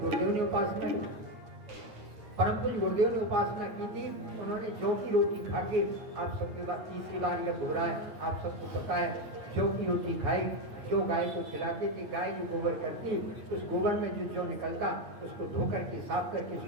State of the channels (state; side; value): late; left; 9.1 ms